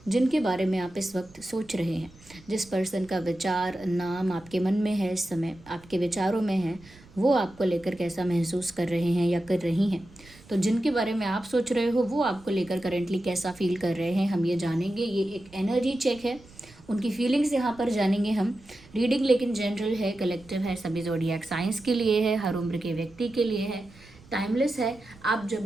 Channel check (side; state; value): right; noise; rumble, 24 dB below the sound